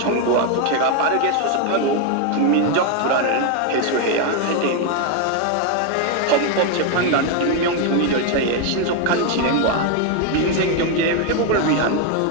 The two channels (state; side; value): different; both; correlation 0.01